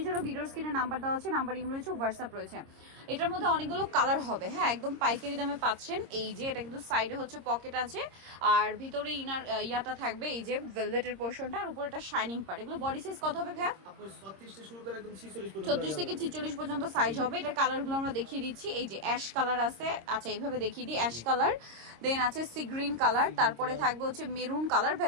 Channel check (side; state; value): left; late; 26 ms